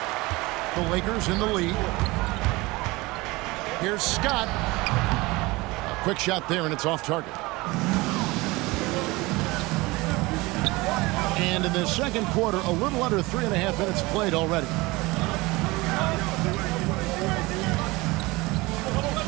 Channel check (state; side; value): quieter; left; 22.3 dB